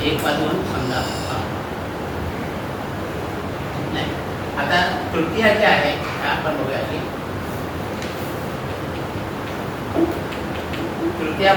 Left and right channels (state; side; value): identical; both; correlation 1.00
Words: 1 वाजून समजा नाही. आता तृतीया जी आहे आपण बघूया की तृतीया